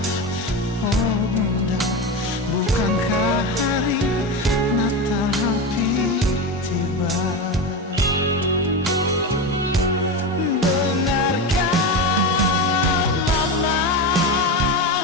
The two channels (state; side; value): normal; both; correlation 0.20